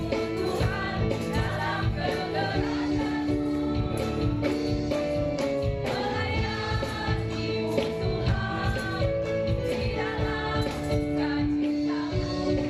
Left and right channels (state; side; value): identical; both; correlation 1.00